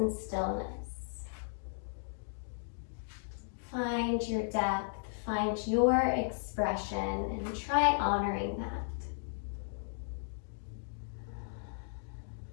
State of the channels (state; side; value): silent; right; digital silence